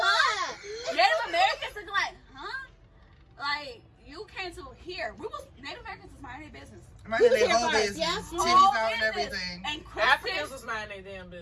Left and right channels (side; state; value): both; identical; correlation 1.00